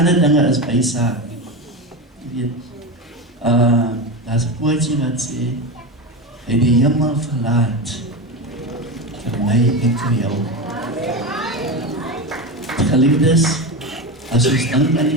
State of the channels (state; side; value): normal; both; correlation 0.20